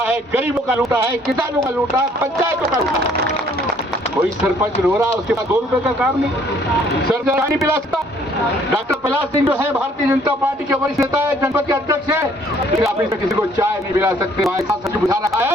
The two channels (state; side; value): normal; both; correlation 0.61